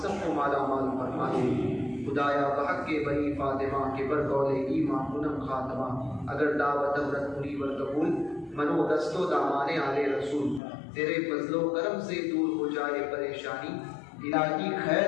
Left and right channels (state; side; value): drops out; right; at 10.6 s